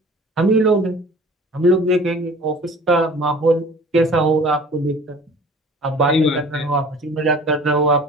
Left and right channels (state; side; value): normal; both; correlation 0.46